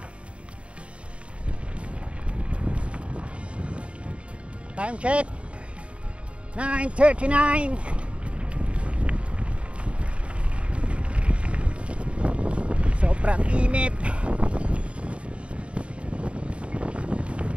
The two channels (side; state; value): left; late; 0.060 ms